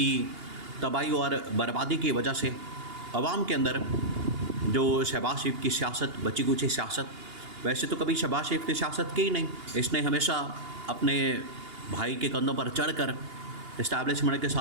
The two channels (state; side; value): late; left; 2.8 ms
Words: تباہی اور بربادی کی وجہ سے عوام کے اندر جو شہباز شریف کی سیاست، بچی کچی سیاست، ویسے تو کبھی شہباز شریف کی سیاست کی ہی نہیں، اس نے ہمیشہ اپنے بھائی کے کندھوں پر چڑھ کر اسٹیبلشمنٹ کے